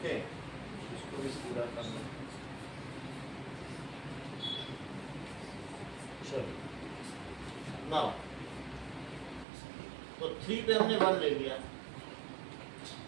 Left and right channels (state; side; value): drops out; left; at 9.5 s